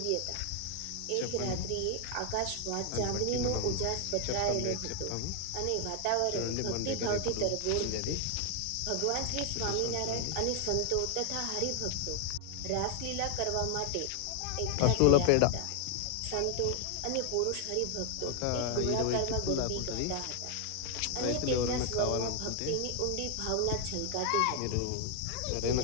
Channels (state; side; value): different; both; correlation 0.00